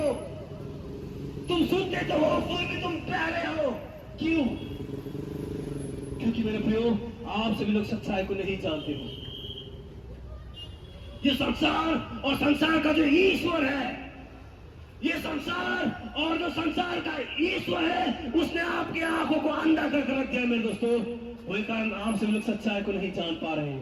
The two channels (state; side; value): identical; both; correlation 1.00